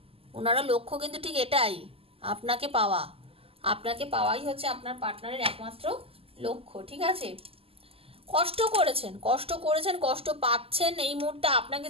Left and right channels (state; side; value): late; left; 0.28 ms